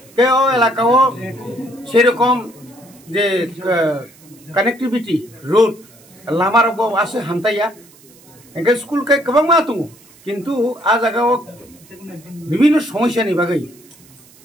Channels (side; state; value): right; noise; hiss, 26 dB below the sound